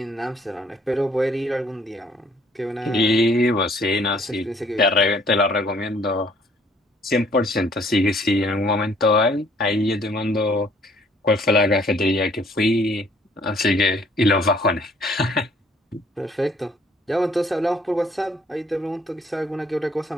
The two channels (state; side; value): normal; both; correlation 0.61